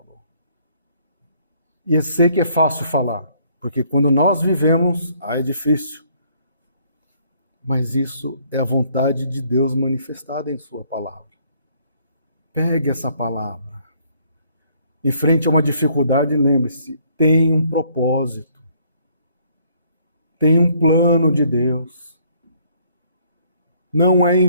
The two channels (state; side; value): inverted; both; correlation -0.65